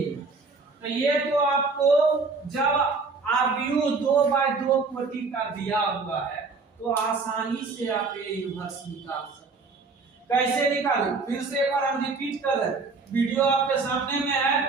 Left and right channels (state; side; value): quieter; left; 4.2 dB